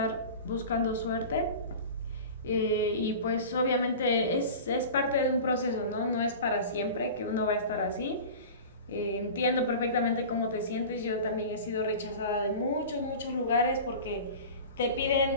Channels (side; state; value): both; inverted; correlation -0.35